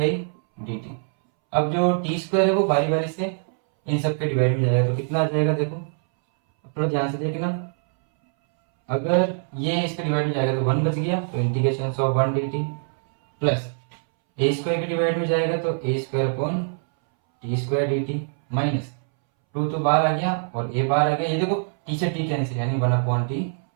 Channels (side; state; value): left; silent; 63 dB below the other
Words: dt। अब जो t² है वो बारी बारी से इन सब के डिवाइड में जाएगा, तो कितना आ जाएगा देखो थोड़ा ध्यान से देखना, अगर ये इसके डिवाइड में जाएगा तो 1 बच गया, तो integration of 1 dt, plus a² के डिवाइड में जाएगा तो a² t² dt, माइनस 2 तो बाहर आ गया और a बाहर आ गया, ये देखो t से t कैंसिल, यानी 1/t